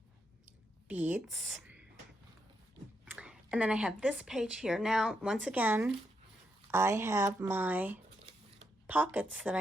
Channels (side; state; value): both; normal; correlation 0.81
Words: beads. And then I have this page here. Now, once again, I have my pockets that